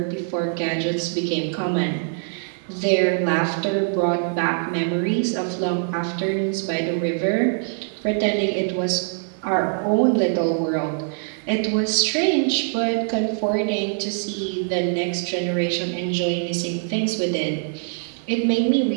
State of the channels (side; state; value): left; silent; 61 dB below the other